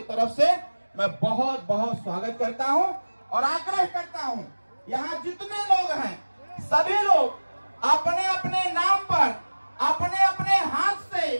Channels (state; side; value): inverted; both; correlation -1.00